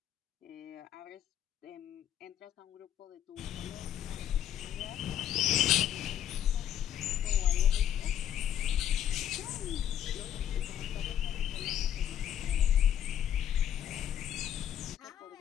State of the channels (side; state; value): right; quieter; 10.4 dB